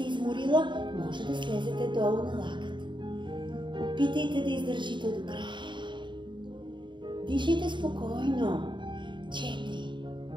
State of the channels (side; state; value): left; late; 0.23 ms